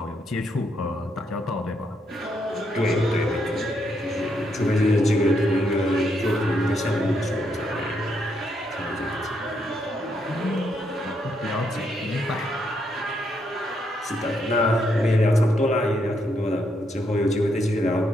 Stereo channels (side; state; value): both; normal; correlation 0.77